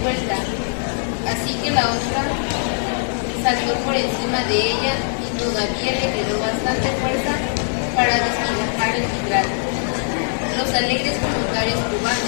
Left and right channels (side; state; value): right; silent; digital silence